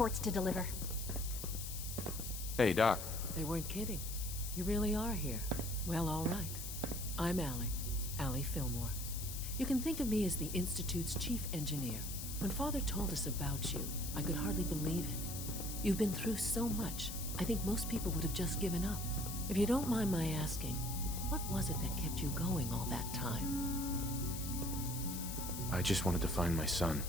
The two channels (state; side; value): noise; left; hiss, 7 dB below the sound